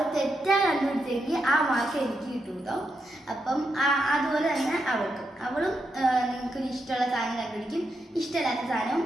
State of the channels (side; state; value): both; normal; correlation 0.83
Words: തെറ്റായി കണ്ടുപിടിച്ചെങ്കിൽ ആ മാർക്ക് എനിക്ക് കിട്ടുള്ളൂ. അപ്പം അതുപോലെ തന്നെ അവളും നിങ്ങൾക്കൊരു ഇഷ്ടമുള്ള സാധനം കണ്ടുപിടിക്കും, ഇഷ്ടമില്ലാത്ത സാധനം